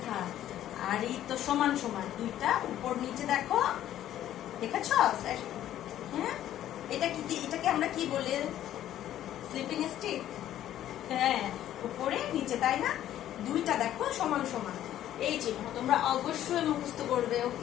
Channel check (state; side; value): quieter; right; 12.1 dB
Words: আর এই তো সমান সমান, দুইটা উপর নিচে দেখো, দেখেছ? হ্যাঁ, এটাকে আমরা কি বলি? Sleeping stick. হ্যাঁ, উপরে নিচে, তাই না? দুইটা দেখো সমান সমান, এই চিহ্ন তোমরা অবশ্যই মুখস্থ করবে,